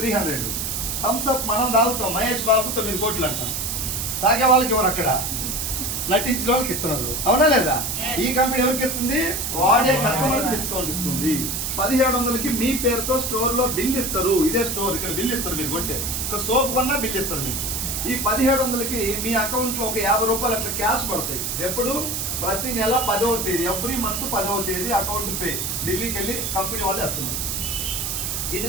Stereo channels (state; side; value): noise; right; hiss, 2 dB below the sound